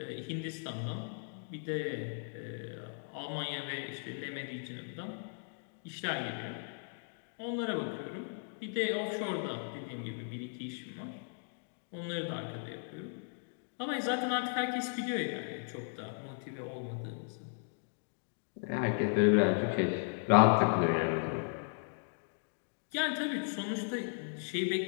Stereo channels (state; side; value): silent; right; digital silence